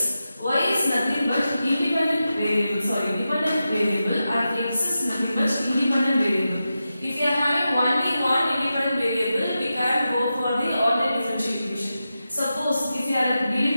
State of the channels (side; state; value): both; inverted; correlation -0.91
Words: Y is nothing but dependent variable and x is nothing but independent variable. If you are having only one independent variable, we can go for the ordinary differential equation. Suppose if you are